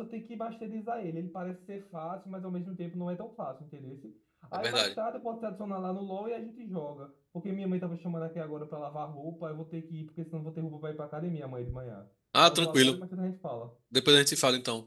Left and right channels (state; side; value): identical; both; correlation 1.00